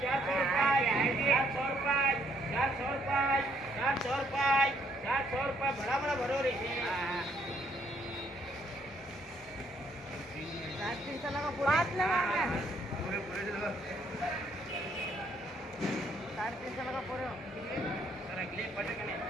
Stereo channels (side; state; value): both; normal; correlation 0.68